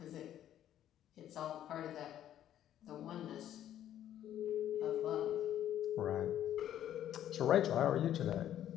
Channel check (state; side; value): quieter; right; 11.4 dB